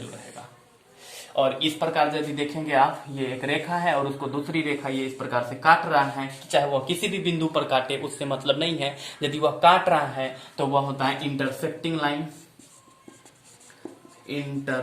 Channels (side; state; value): both; identical; correlation 1.00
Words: रहेगा। और इस प्रकार यदि देखेंगे आप, ये एक रेखा है और उसको दूसरी रेखा ये इस प्रकार से काट रहा है, चाहे वह किसी भी बिंदु पर काटे उससे मतलब नहीं है। यदि वह काट रहा है तो वह होता है इंटरसेक्टिंग